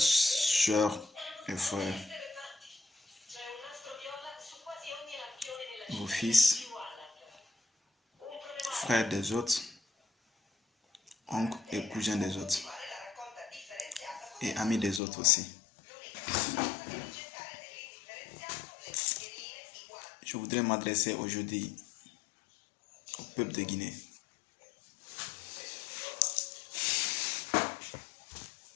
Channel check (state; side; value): drops out; right; at 15.0 s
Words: et frères, vos fils, frères des autres, oncles et cousins des autres, et amis des autres aussi. Je voudrais m'adresser aujourd'hui au peuple de Guinée.